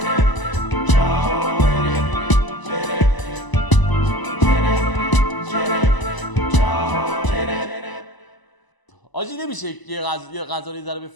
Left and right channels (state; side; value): late; right; 1.0 ms